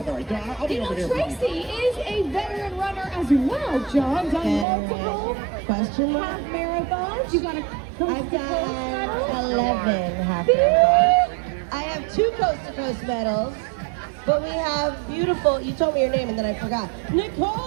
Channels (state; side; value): drops out; left; at 4.7 s